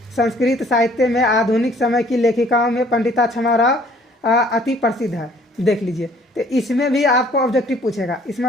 संस्कृत साहित्य में आधुनिक समय की लेखिकाओं में पंडिता छमाराव अति प्रसिद्ध है। देख लीजिए, तो इसमें भी आपको ऑब्जेक्टिव पूछेगा। इसमें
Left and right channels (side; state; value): both; normal; correlation 0.58